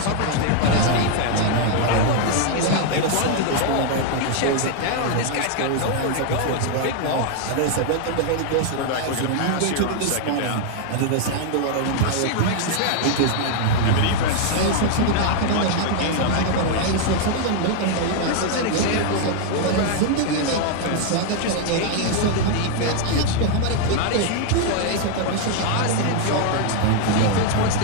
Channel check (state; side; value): different; both; correlation 0.00